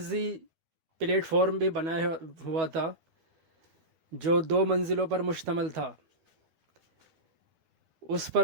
پلیٹ فارم بھی بنایا ہوا تھا جو 2 منزلوں پر مشتمل تھا۔ اس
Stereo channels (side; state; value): left; late; 12 ms